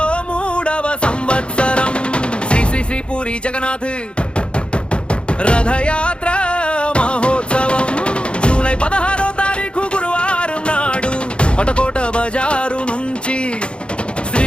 3వ సంవత్సరం శ్రీ శ్రీ శ్రీ పూరి జగన్నాథ్ రథయాత్ర మహోత్సవం జూలై 16వ తారీఖు గురువారం నాడు పటకోట బజారు నుంచి శ్రీ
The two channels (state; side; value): late; right; 0.056 ms